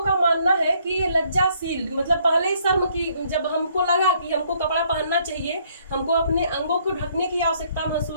का मानना है कि ये लज्जाशील मतलब पहले ही शर्म की, जब हमको लगा कि हमको कपड़ा पहनना चाहिए, हमको अपने अंगों को ढकने की आवश्यकता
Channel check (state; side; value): inverted; both; correlation -0.66